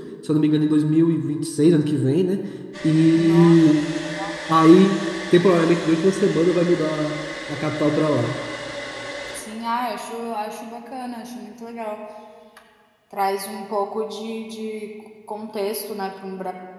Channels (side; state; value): both; identical; correlation 1.00